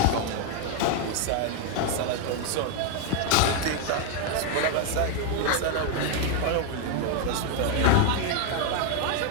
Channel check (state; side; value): different; both; correlation 0.01